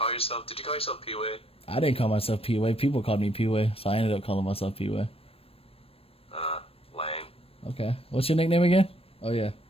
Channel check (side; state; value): right; late; 0.28 ms